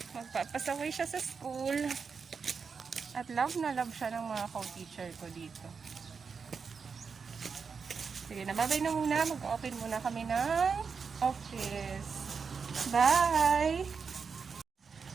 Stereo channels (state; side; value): quieter; left; 5.6 dB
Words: Magpapasaway siya sa school. At love na love siya ng mga co-teacher ko dito. Sige, nababay na muna. Mag-open muna kami ng office. Bye!